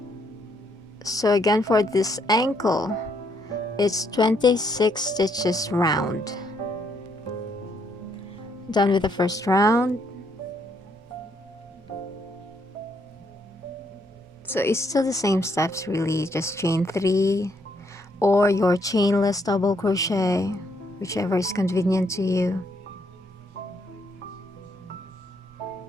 So again, for this ankle, it's 26 stitches round. Done with the first round. So it's still the same steps really, just chain 3 or your chainless double crochet, whichever is convenient to you.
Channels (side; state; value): both; normal; correlation 0.73